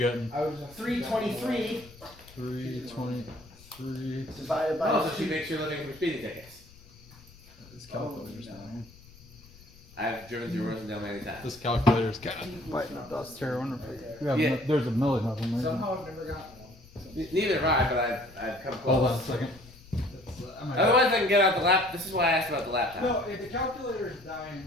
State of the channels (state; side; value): noise; left; rumble, 23 dB below the sound